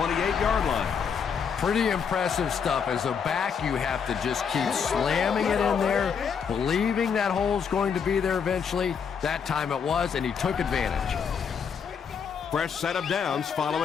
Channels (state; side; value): quieter; right; 6.7 dB